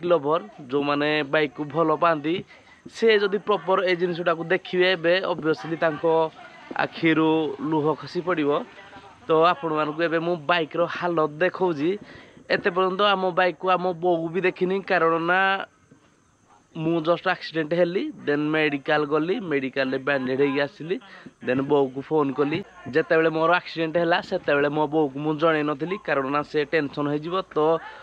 लवर जो माने बाइक को भलो पांती से जदि प्रॉपर ए जिनसटा को देखिबे बे ऑब्वियसली तांको आखिरु लुह खसी पड़िबो तो आपण मान को एबे मु बाइक रो हालत देखौजी एते पर्यंत आम बाइक को आम बोगु भी देखिनी कारण ना मु जस्ट एक्सीडेंट हेली देन मेडिकल गली मेडिकल रे बैंडेड हे आसिली देन बो को फोन कली जते बेले मोर एक्सीडेंट हैला सेते बेले मो बो को मु जणे नथिली कारण ना से टेंशन हो जिवो तो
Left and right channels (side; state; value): both; identical; correlation 1.00